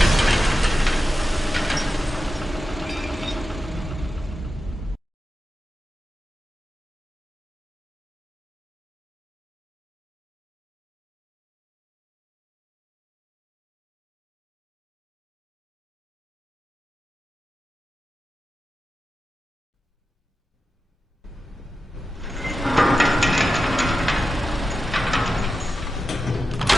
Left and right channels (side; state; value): both; normal; correlation 0.91